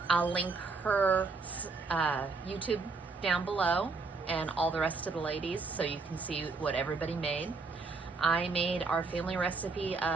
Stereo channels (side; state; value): left; quieter; 4.2 dB